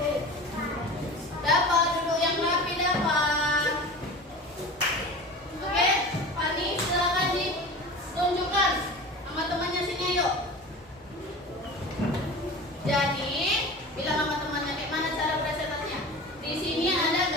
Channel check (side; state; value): both; normal; correlation 0.35